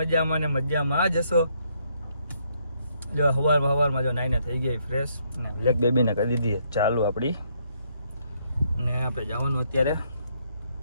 મજામાં ને મજામાં જ હશો. જો હવારમાં જો નાઈને થઈ ગઈ ફ્રેશ ને બ્લેક બેબીને કરી દીધી ચાલુ આપણી. ને આપણે જવાનું અત્યારે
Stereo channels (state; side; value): inverted; both; correlation -0.73